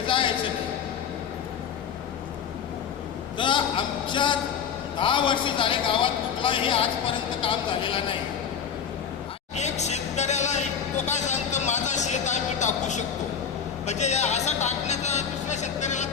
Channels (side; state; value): right; quieter; 7.4 dB